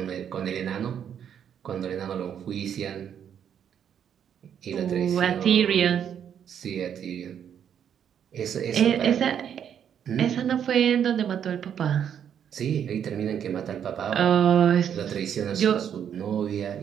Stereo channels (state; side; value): quieter; left; 8.7 dB